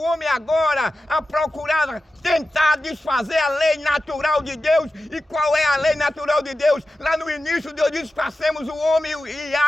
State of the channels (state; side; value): normal; both; correlation 0.93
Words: homem agora a procurar tentar desfazer a lei natural de Deus. E qual é a lei natural de Deus? Lá no início Deus disse, façamos o homem e